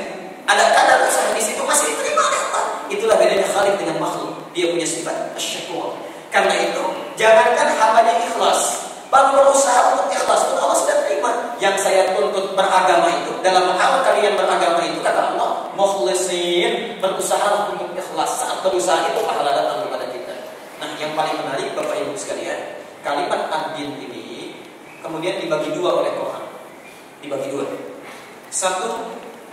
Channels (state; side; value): identical; both; correlation 1.00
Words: ada kadar usaha di situ masih diterima oleh Allah. Itulah bedanya Khalik dengan makhluk. Dia punya sifat asy-syakur. Karena itu, jangankan hambanya ikhlas, baru berusaha untuk ikhlas pun Allah sudah terima. Yang saya tuntut beragama itu, dalam hal kalian beragama itu, kata Allah, mukhlisin, berusaha untuk ikhlas. Saat berusaha itu pahala datang kepada kita. Nah, yang paling menarik Bapak Ibu sekalian, kalimat ad-din ini kemudian dibagi dua oleh Quran. Dibagi dua. Satu,